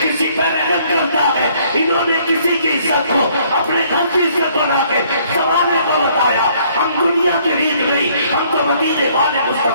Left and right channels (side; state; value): both; inverted; correlation -0.63